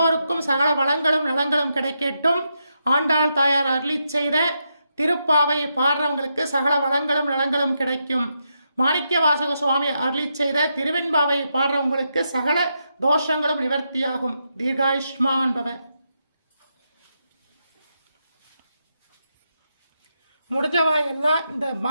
சகல வளங்களும் நலங்களும் கிடைக்கட்டும். ஆண்டாள் தாயார் அருளிச் செய்த திருப்பாவையை பாடுறவங்களுக்கு சகல வளங்களும் நலங்களும் கிடைக்கும். மாணிக்கவாசக சுவாமி அருளிச் செய்த திருவெண்பாவையை பாடுறவங்களுக்கு சகல தோஷங்களும் நிவர்த்தியாகும். தீர்காயுஷ்மான் பவ. முடிஞ்சவா எல்லாம் இந்த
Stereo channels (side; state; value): both; inverted; correlation -0.83